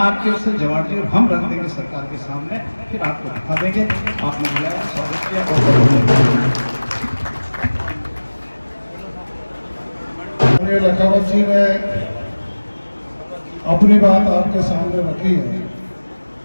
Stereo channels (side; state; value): both; inverted; correlation -1.00